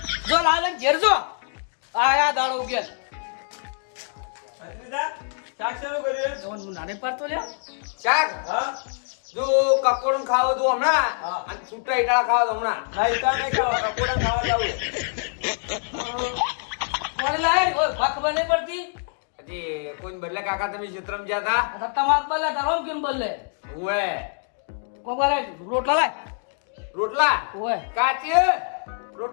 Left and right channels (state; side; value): silent; right; 57 dB below the other